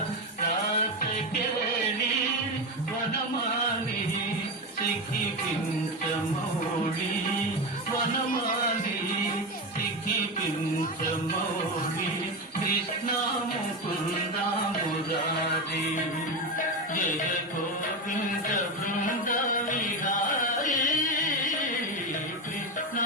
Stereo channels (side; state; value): both; normal; correlation 0.16